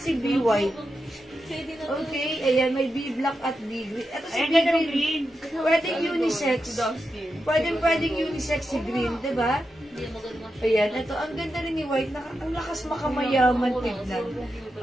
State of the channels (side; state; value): both; normal; correlation 0.88